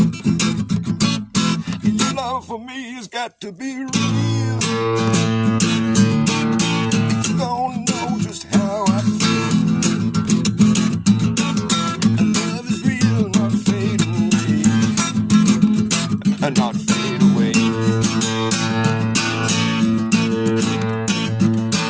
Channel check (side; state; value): both; identical; correlation 1.00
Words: Your love for me has got to be real. You don't know just how I feel. Love is real, not fade away. Not fade away.